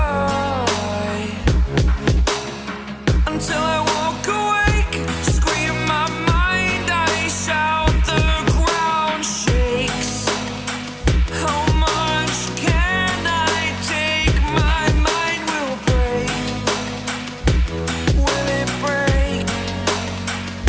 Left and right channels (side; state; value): both; identical; correlation 1.00